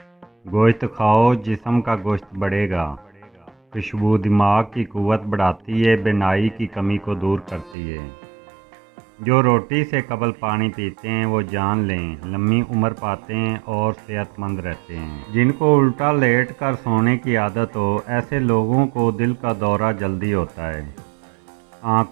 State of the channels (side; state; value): left; drops out; at 7.8 s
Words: گوشت کھاؤ، جسم کا گوشت بڑھے گا۔ خوشبو دماغ کی قوت بڑھاتی ہے، بینائی کی کمی کو دور کرتی ہے۔ جو روٹی سے قبل پانی پیتے ہیں وہ جان لیں لمبی عمر پاتے ہیں اور صحت مند رہتے ہیں۔ جن کو الٹا لیٹ کر سونے کی عادت ہو، ایسے لوگوں کو دل کا دورہ جلدی ہوتا ہے۔